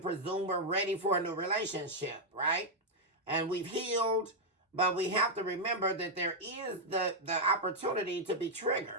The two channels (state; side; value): normal; both; correlation -0.03